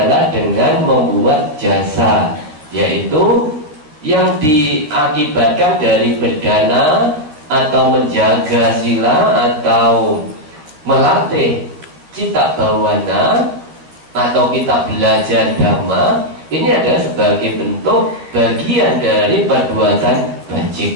dengan membuat jasa, yaitu yang diakibatkan dari berdana atau menjaga sila atau melatih cita bawana atau kita belajar dhamma. Ini adalah sebagai bentuk bagian dari perbuatan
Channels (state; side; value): late; left; 13 ms